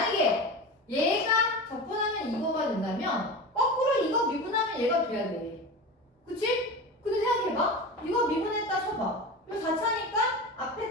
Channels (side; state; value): both; normal; correlation 0.28